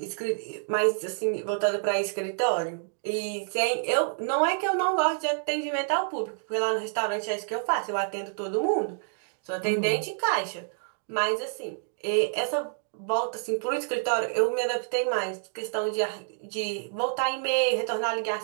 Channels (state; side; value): silent; left; digital silence